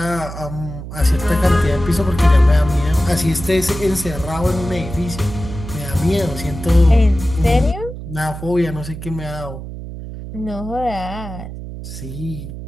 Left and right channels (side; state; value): right; noise; hum, 10 dB below the sound